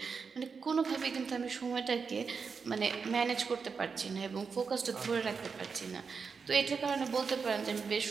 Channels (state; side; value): quieter; left; 5.4 dB